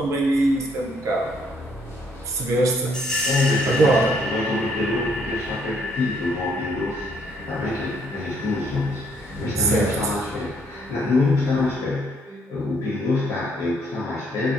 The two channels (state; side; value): normal; both; correlation 0.69